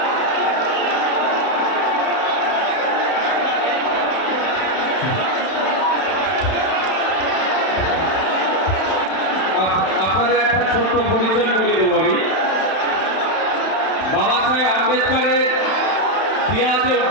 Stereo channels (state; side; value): late; right; 31 ms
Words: আপনাদের একটা ছোট্ট পরিচয় করিয়ে দেবো আমি। বাবা সাহেব আম্বেদকরের দেওয়া যে